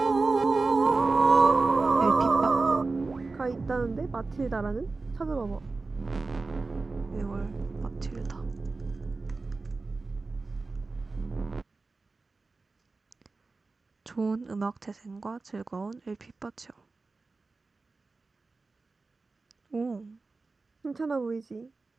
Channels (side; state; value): left; quieter; 3.8 dB